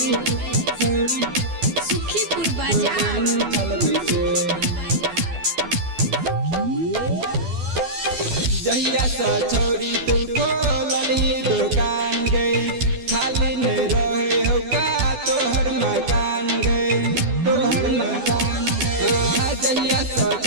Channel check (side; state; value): left; late; 12 ms